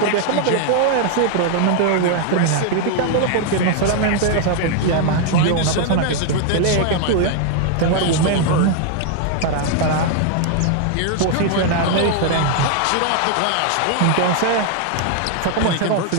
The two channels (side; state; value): both; different; correlation 0.00